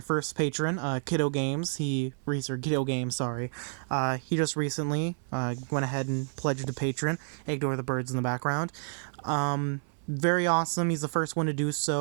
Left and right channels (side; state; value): left; silent; 58 dB below the other